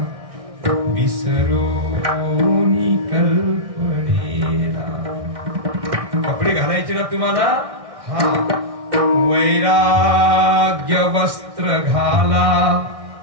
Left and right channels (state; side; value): late; left; 1.6 ms